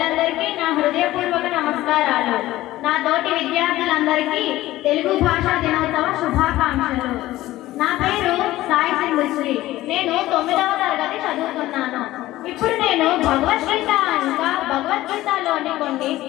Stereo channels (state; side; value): quieter; right; 16.2 dB